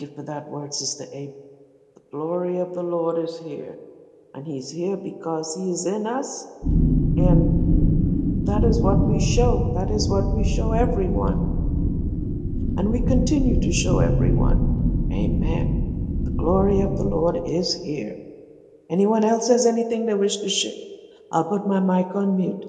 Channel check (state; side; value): identical; both; correlation 1.00